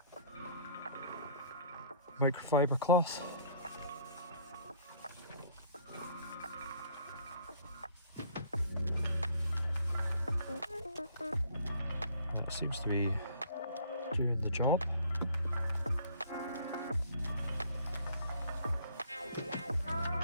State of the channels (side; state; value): both; inverted; correlation -0.56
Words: microfiber cloth. It seems to be doing the job.